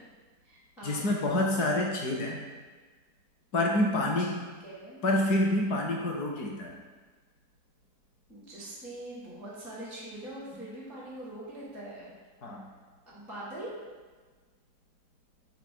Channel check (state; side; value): late; right; 4.6 ms